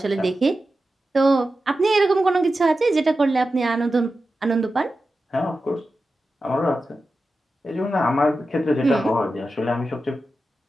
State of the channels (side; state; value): both; normal; correlation 0.92